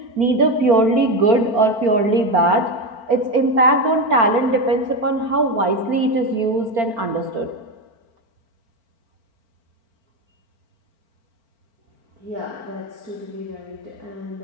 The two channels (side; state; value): left; late; 4.4 ms